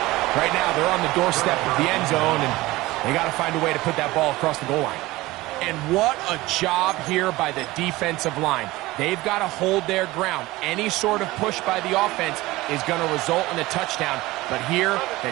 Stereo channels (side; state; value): left; quieter; 19.2 dB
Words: right now they're on the doorstep of the end zone, and they got to find a way to put that ball across the goal line. And what a job here by the defensive line. They've got to hold their ground. Any sort of push by the offense is going to result in a touchdown. But here, the